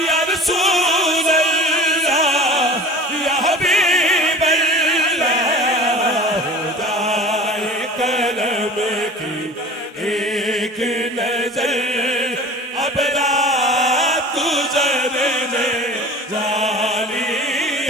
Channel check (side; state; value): both; normal; correlation 0.40